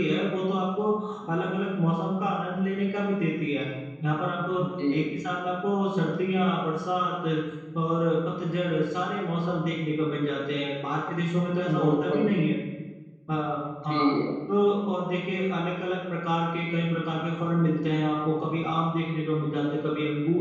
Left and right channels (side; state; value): both; identical; correlation 1.00